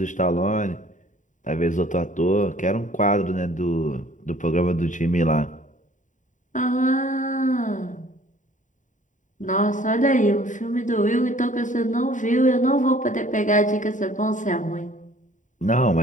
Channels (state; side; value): late; right; 0.36 ms